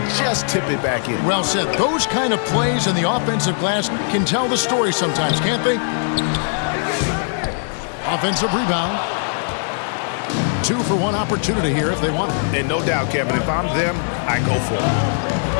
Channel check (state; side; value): silent; right; 58 dB below the other